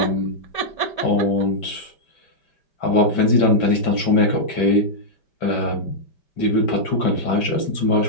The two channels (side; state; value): right; late; 5.1 ms